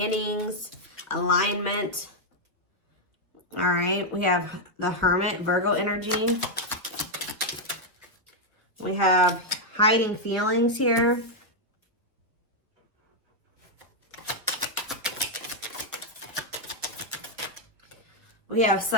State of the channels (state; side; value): normal; both; correlation 0.00